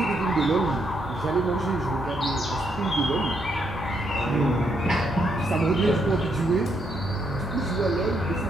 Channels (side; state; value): both; normal; correlation 0.76